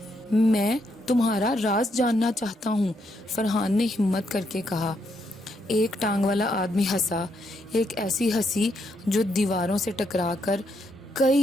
میں تمہارا راز جاننا چاہتا ہوں، فرحان نے ہمت کر کے کہا۔ ایک ٹانگ والا آدمی ہنسا، ایک ایسی ہنسی جو دیواروں سے ٹکرا کر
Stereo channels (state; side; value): normal; both; correlation 0.77